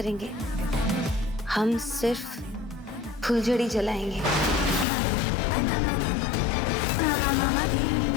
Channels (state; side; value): drops out; right; at 4.9 s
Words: हम सिर्फ फुलझड़ी जलाएंगे।